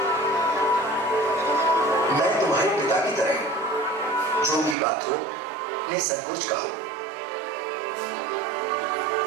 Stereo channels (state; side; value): drops out; left; at 4.8 s